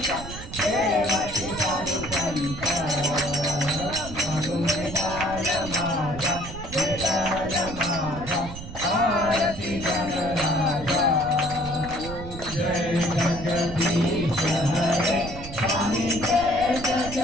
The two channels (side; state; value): right; noise; rumble, 11 dB below the sound